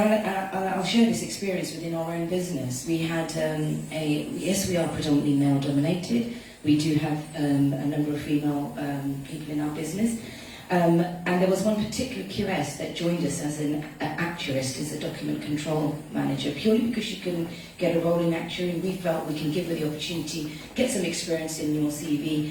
share this experience within our own business. We had yes, we are predominantly male dominated. We do have a number of female people in our business. And there was one particular QS that joined us as an actuarist, as a document control manager, purely because she couldn't get a role in actuary. We felt we can give her the opportunity, get some experience in your CV,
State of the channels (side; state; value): both; identical; correlation 1.00